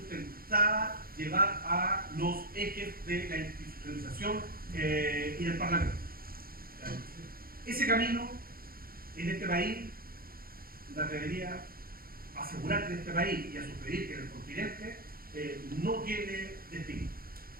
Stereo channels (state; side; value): late; left; 0.43 ms